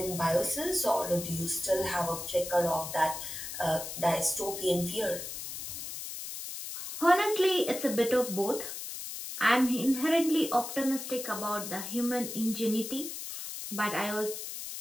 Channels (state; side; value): noise; left; hiss, 7 dB below the sound